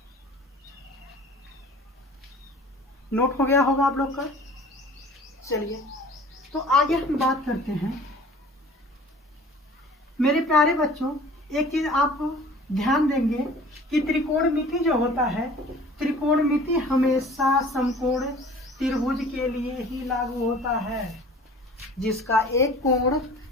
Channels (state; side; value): normal; both; correlation 0.47